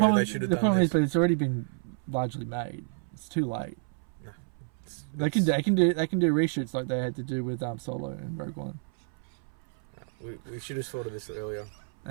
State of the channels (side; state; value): left; silent; 58 dB below the other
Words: they should have done this. The problem is, but it's already been largely made. It's too late. No, they can do reshoots like they had to do with Solo and Rogue One. We should have thought of this earlier.